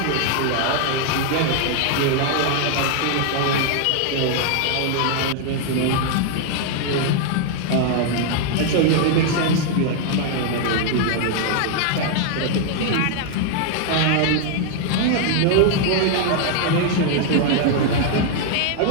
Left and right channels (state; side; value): different; both; correlation 0.00